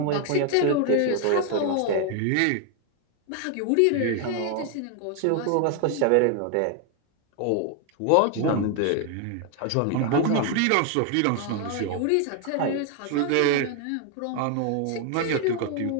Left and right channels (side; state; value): both; different; correlation 0.01